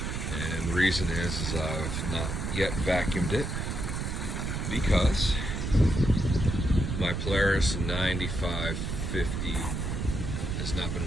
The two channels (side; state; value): right; noise; rumble, 2 dB below the sound